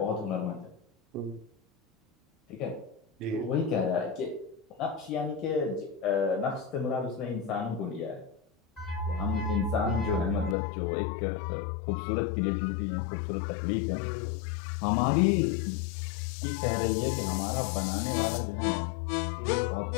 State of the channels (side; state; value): right; drops out; at 10.6 s